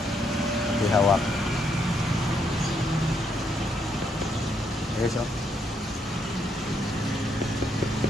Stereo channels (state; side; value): normal; both; correlation 0.74